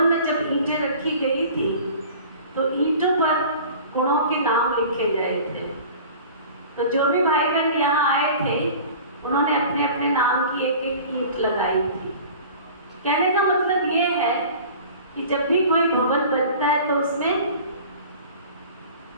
में जब ईंटें रखी गई थी तो ईंटों पर गुणों के नाम लिखे गए थे। तो जो भी भाई बहन यहाँ आए थे उन्होंने अपने अपने नाम की एक एक ईंट लगाई थी। कहने का मतलब ये है कि जब भी कोई भवन बनता है तो उसमें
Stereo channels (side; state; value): both; inverted; correlation -0.42